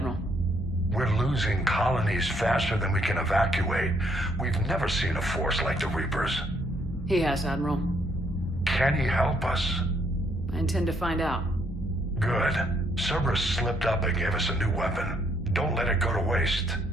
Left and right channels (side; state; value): both; normal; correlation 0.70